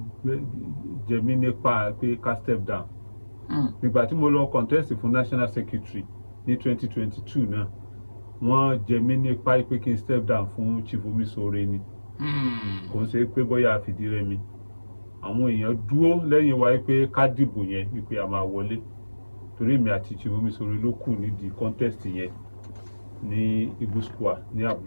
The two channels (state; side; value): inverted; both; correlation -1.00